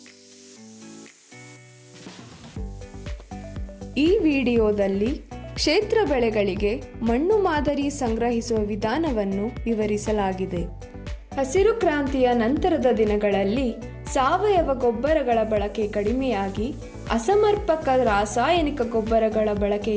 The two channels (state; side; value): identical; both; correlation 1.00